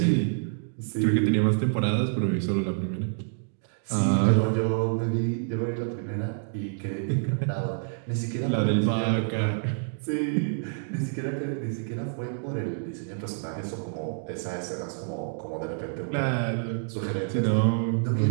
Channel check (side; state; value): left; silent; digital silence